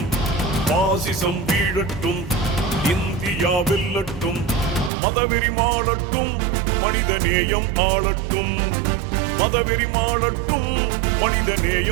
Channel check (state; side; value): drops out; left; at 4.9 s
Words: பாசிசம் வீழட்டும், இந்தியா வெல்லட்டும். மதவெறி மாளட்டும், மனிதநேயம் ஆளட்டும். மதவெறி மாளட்டும்,